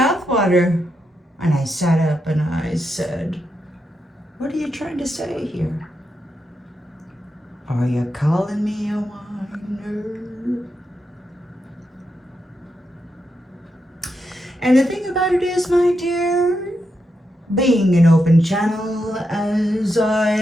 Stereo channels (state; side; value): normal; both; correlation 0.84